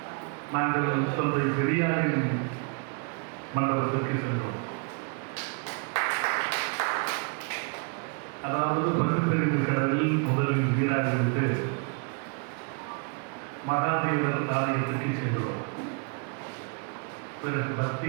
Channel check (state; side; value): quieter; left; 35.9 dB